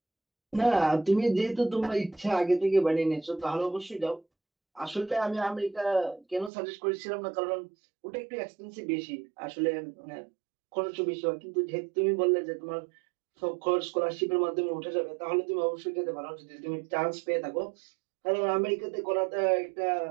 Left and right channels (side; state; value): left; drops out; at 6.5 s